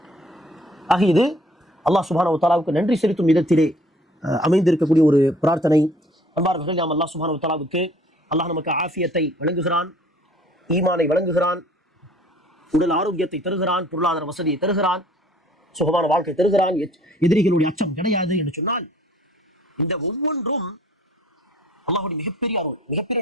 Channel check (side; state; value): both; normal; correlation 0.55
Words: ஆக இது அல்லாஹ் சுப்ஹானஹு வ தஆலாவுக்கு நன்றி செலுத்தும் விதத்திலே அமைந்திருக்கக்கூடிய ஒரு பிரார்த்தனை. அன்பார்ந்தவர்களே, நாம் அல்லாஹ் சுப்ஹானஹு வ தஆலாவுக்கு, அல்லாஹ் நமக்கு ஆஃபியத்தை வழங்குகிறான், ஈமானை வழங்குகிறான், உடல் ஆரோக்கியத்தை தருகிறான், பொருளாதார வசதியை தருகிறான், சுகமான வாழ்க்கை தருகிறான், எதிரிகளுடைய அச்சம் கிடையாது என்று சொன்னால், இந்த ஒவ்வொன்றும் அல்லாஹ்வுடைய மிகப்பெரிய அருள்,